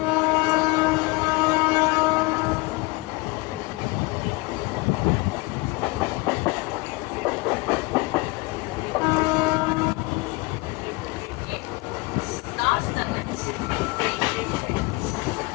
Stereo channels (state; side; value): quieter; right; 24.4 dB